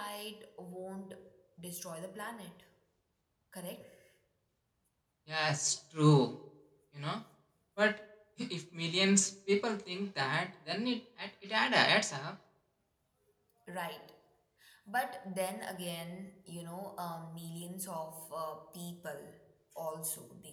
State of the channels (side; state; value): both; identical; correlation 1.00